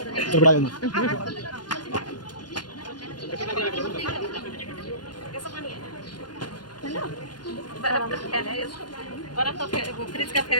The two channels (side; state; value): right; late; 0.70 ms